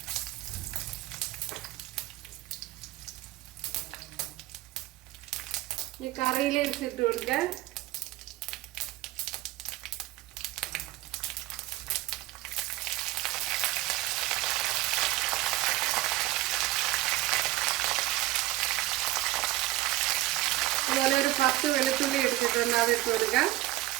ഈ കറിയിലേക്ക് ഇട്ട് കൊടുക്കാം. അതുപോലെ ഒരു 10 വെളുത്തുള്ളി എടുത്തിട്ടുണ്ട്, അതിട്ട് കൊടുക്കാം.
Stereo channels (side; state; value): left; quieter; 17.5 dB